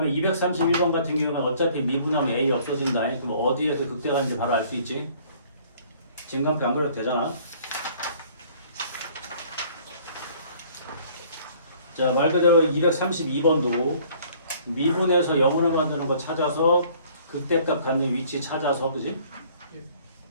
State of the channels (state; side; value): inverted; both; correlation -0.56